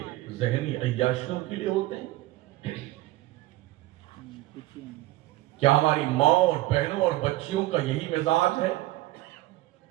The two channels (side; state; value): left; quieter; 17.6 dB